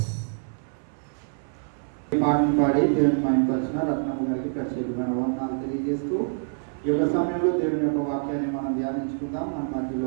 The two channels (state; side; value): silent; left; 61 dB below the other